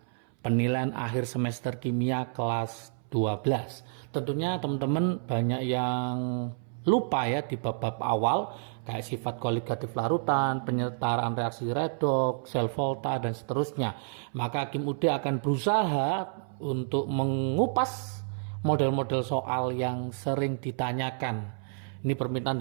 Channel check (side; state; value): left; silent; 58 dB below the other